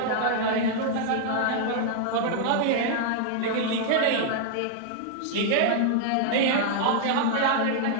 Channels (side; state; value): both; different; correlation -0.01